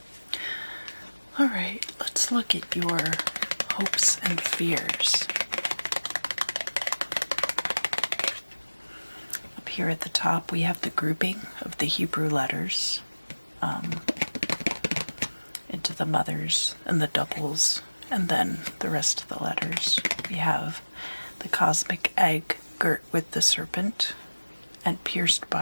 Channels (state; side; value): inverted; both; correlation -1.00